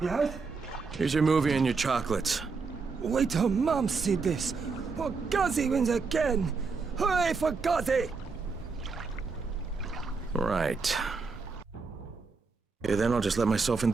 Yes? Here's your movie and your chocolates. Wait till Mom see this. Or Guzzy wins again. Hooray for Guzzy! Right. Okay, then I'll just let myself in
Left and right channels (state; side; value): quieter; left; 4.6 dB